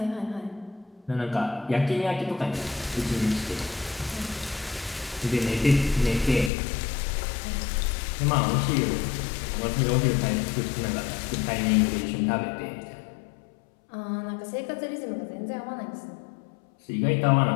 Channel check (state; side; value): drops out; right; at 6.5 s